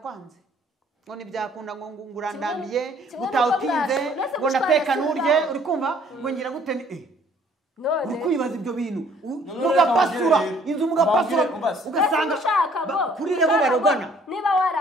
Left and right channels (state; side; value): normal; both; correlation 0.59